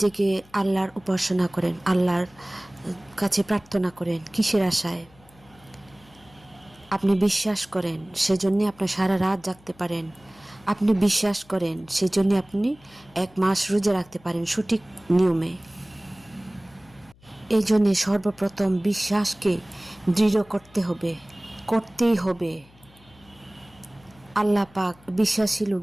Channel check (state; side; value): noise; left; hum, 27 dB below the sound